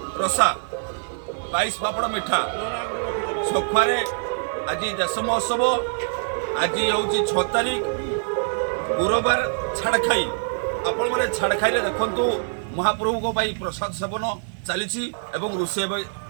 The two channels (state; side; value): silent; left; 55 dB below the other